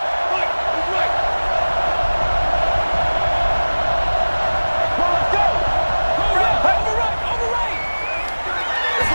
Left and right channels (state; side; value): inverted; both; correlation -1.00